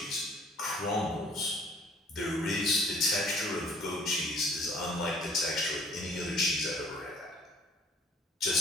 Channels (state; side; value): normal; both; correlation 0.56